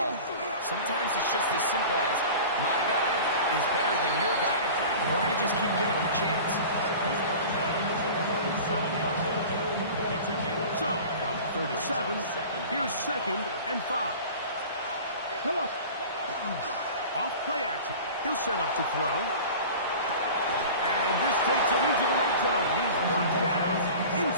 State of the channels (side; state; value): both; inverted; correlation -0.38